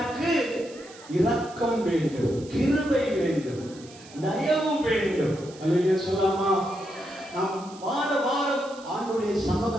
இரக்கம் வேண்டும், கிருபை வேண்டும், தயவு வேண்டும். அல்லேலூயா சொல்லாமா? நாம் வார வாரம் ஆண்டுடைய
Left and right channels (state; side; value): noise; right; hiss, 21 dB below the sound